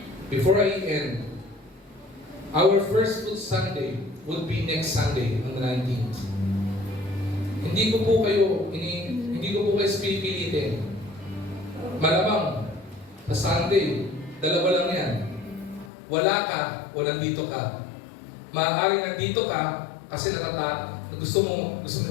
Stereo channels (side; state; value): right; drops out; at 15.9 s